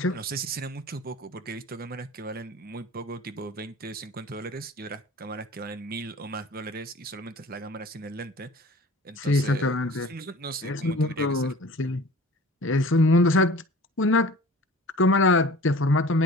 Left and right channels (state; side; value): normal; both; correlation 0.43